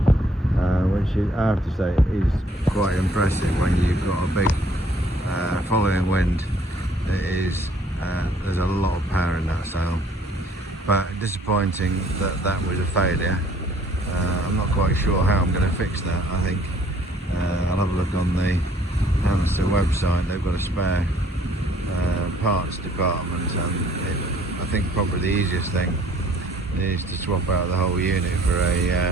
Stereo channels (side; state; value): both; normal; correlation 0.60